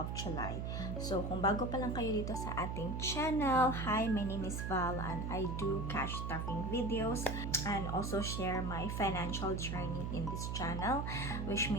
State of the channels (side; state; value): right; noise; hum, 3 dB below the sound